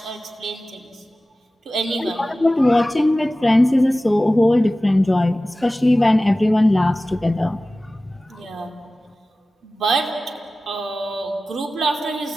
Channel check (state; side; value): normal; both; correlation 0.96